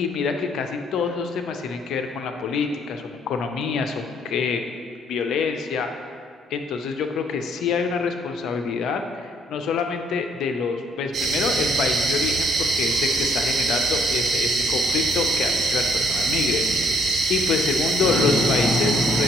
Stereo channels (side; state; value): both; normal; correlation 0.66